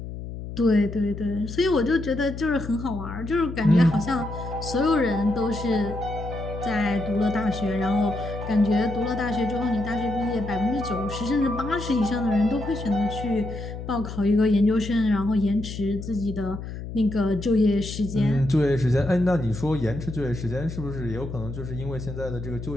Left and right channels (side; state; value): left; noise; hum, 9 dB below the sound